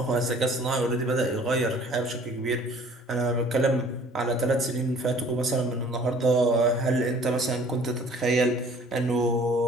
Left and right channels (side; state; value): both; normal; correlation 0.53